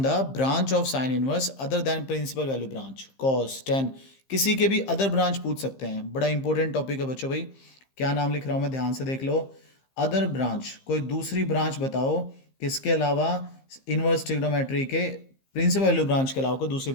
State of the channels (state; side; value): late; right; 15 ms